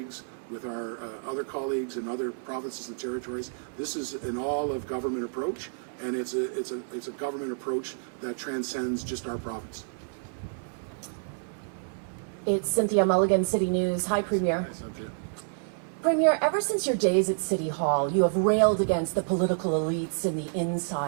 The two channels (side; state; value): left; silent; 59 dB below the other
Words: with our other colleagues in other provinces and territories. This is an all-of-government approach, and it's a government approach that transcends just our province. It's Cynthia Mulligan, City News. Hi, Premier. Hi, Cynthia. Premier, ever since your days at City Hall, you have railed against the political elites and the